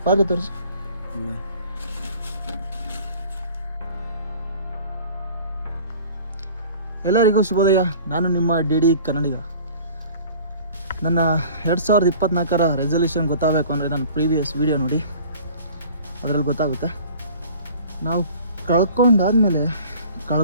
ಪಾತ್ರೆ ತೋರಿಸಿ. ಎಲ್ಲರಿಗೂ ಶುಭೋದಯ. ನಾನು ನಿಮ್ಮ ಡಿ ಕನ್ನಡಿಗ. ನನ್ನ 2024ರ ರೆಸಲ್ಯೂಷನ್ ಗೊತ್ತಾಗಬೇಕು ಅಂದರೆ ನನ್ನ ಪ್ರೀವಿಯಸ್ ವೀಡಿಯೋ ನೋಡಿ, ಅದರಲ್ಲಿ ಗೊತ್ತಾಗುತ್ತೆ. ನಾವು ಕಳ್ಕೊಂಡಾದ್ಮೇಲೆ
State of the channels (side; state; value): both; inverted; correlation -0.46